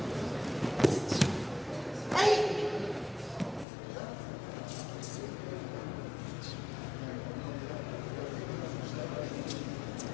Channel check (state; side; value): drops out; right; at 3.7 s